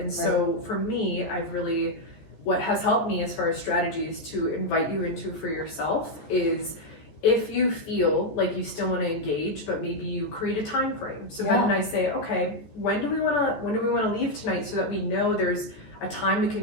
so for me, I've really, what has helped me as far as strategies to invite you into for yourself is, if you feel like you still want to engage, but maybe you create a time frame. So Ben and I say, okay, when do we want to leave tonight, so that we know there's a time we can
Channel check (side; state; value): right; late; 14 ms